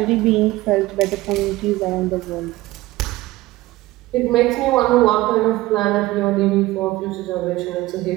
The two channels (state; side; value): quieter; left; 18.2 dB